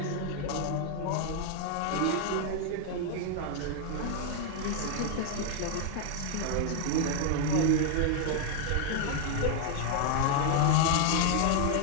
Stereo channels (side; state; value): both; different; correlation 0.00